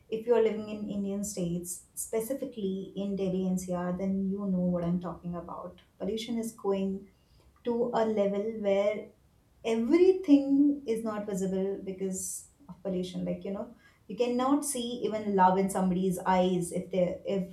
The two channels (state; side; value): identical; both; correlation 1.00